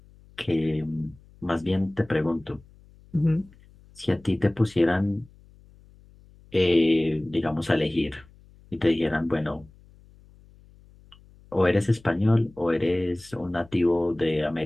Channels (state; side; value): noise; left; hum, 26 dB below the sound